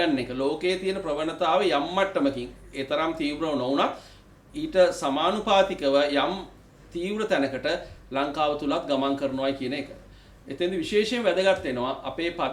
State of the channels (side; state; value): both; identical; correlation 1.00